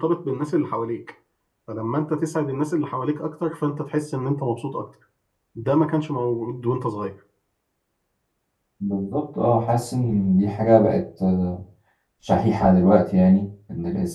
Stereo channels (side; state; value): both; identical; correlation 1.00